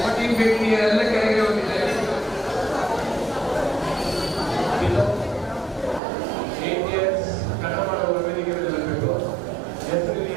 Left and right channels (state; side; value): drops out; left; at 6.0 s